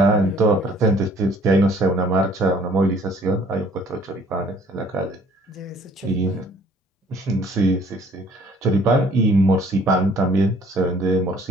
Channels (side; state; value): both; normal; correlation 0.57